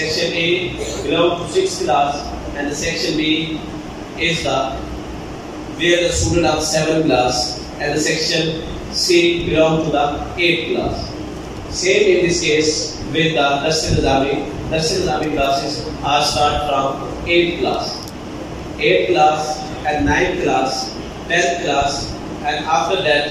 A belongs to 6th class, and the Section B is where the student of 7th class, and the Section C belongs to the 8th class. Same in this case with the Dars Nizami. Dars Nizami classes are start from 8th class. 8th class and 9th class, 10th class, and after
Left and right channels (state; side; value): identical; both; correlation 1.00